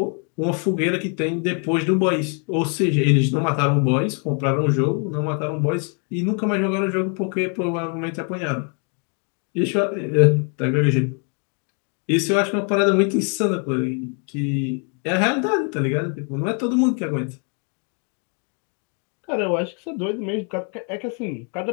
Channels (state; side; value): quieter; right; 39.8 dB